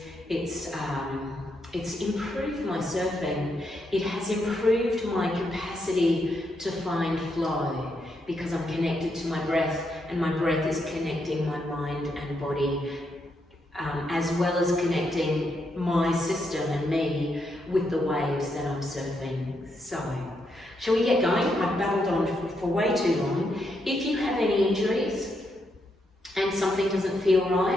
it's improved my surfing, it has improved my capacity to find flow because I'm connected to my breath and my breath is connecting my mind and body as well as connecting my system and me with the waves that I'm surfing. So, shall we get going? I've babbled on for way too long. If you have any injuries and something doesn't feel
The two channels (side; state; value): both; normal; correlation 0.80